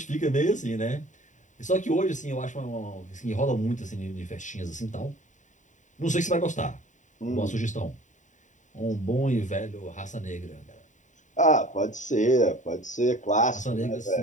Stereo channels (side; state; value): right; late; 0.36 ms